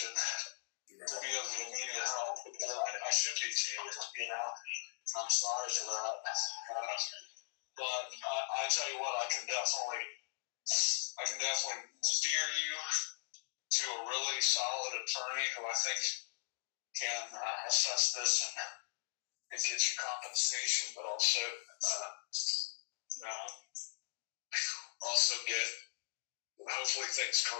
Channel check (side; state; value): right; silent; digital silence